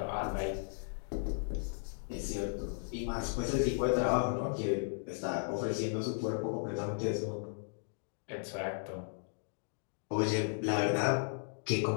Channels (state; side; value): silent; right; digital silence